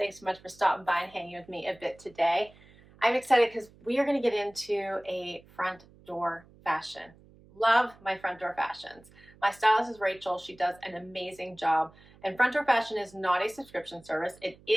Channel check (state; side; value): noise; right; hum, 25 dB below the sound